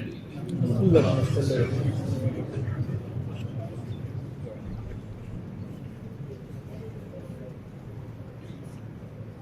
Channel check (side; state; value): both; identical; correlation 1.00